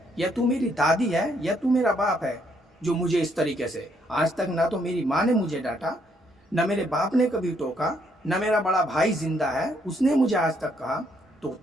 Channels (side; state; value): both; normal; correlation 0.71